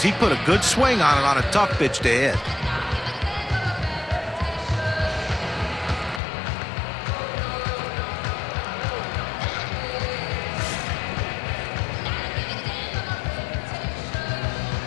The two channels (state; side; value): drops out; right; at 6.2 s